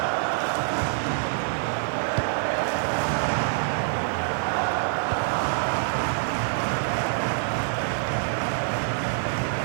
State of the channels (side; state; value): left; silent; digital silence